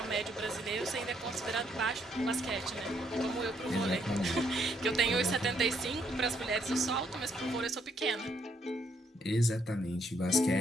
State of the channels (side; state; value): both; normal; correlation 0.72